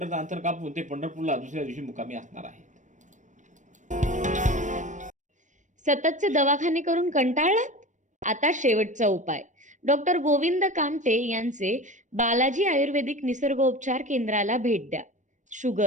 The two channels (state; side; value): late; left; 0.36 ms